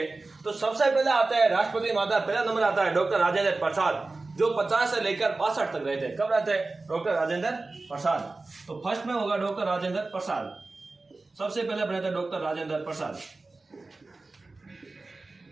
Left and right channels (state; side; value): quieter; left; 3.4 dB